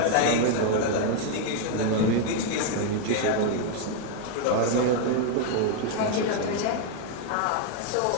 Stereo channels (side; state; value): both; different; correlation 0.00